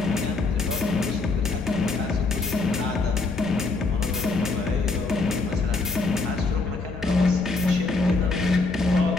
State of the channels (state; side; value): quieter; right; 3.7 dB